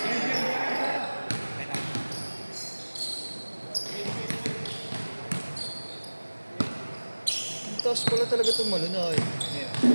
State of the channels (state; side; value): inverted; both; correlation -1.00